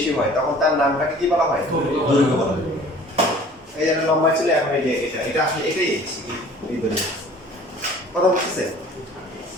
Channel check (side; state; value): both; normal; correlation 0.49